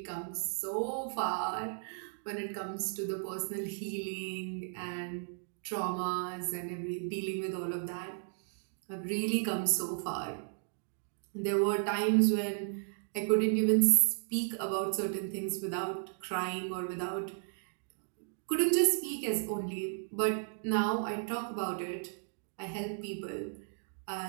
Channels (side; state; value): left; silent; digital silence